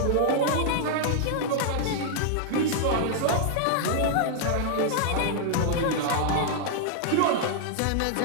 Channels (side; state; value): both; different; correlation -0.01